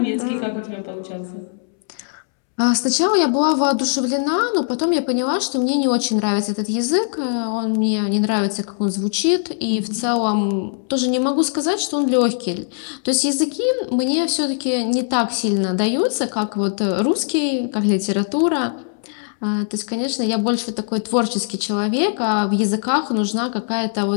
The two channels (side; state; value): right; silent; 65 dB below the other